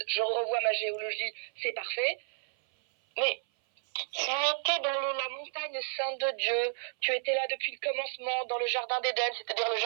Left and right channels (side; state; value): left; silent; 57 dB below the other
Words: je revois ma géologie, c'est parfait. Mais tu étais dans la montagne sainte de Dieu, tu étais là depuis le commencement, dans le jardin d'Éden, c'est-à-dire le